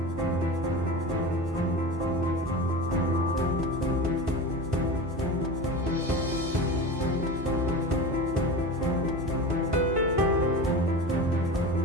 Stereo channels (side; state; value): both; normal; correlation 0.29